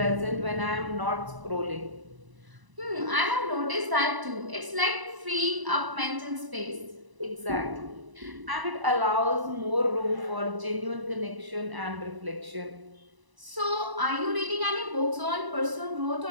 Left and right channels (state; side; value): late; left; 1.0 ms